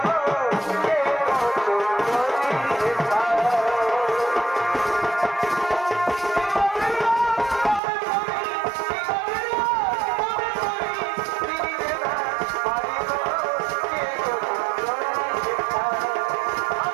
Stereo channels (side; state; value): left; drops out; at 7.8 s